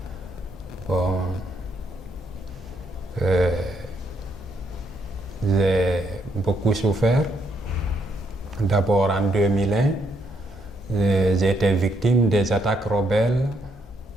Bon, j'ai beaucoup souffert. D'abord en 2001, j'ai été victime des attaques rebelles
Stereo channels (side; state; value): both; normal; correlation 0.75